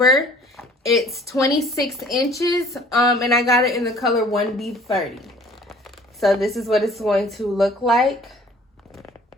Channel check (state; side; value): normal; both; correlation 0.52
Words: It's 26 inches, and I got it in the color 1B30. So this is what it's going to look like